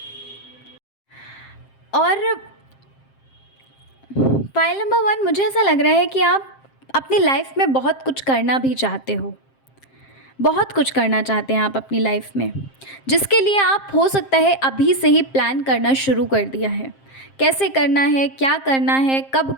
और फ़ाइल नंबर 1, मुझे ऐसा लग रहा है कि आप अपनी लाइफ़ में बहुत कुछ करना भी चाहते हो। बहुत कुछ करना चाहते हैं आप अपनी लाइफ़ में, जिसके लिए आप हो सकता है अभी से ही प्लान करना शुरू कर दिया है। कैसे करना है, क्या करना है, कब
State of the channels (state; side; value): late; right; 7.5 ms